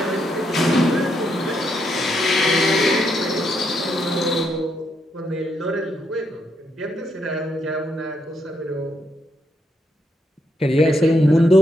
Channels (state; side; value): normal; both; correlation 0.78